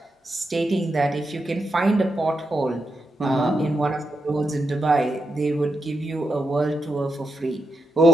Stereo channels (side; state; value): both; normal; correlation 0.86